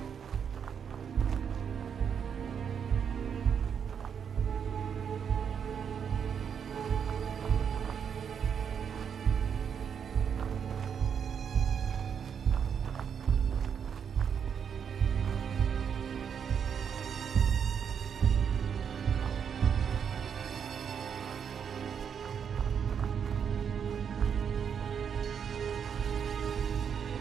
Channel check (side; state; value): left; quieter; 7.5 dB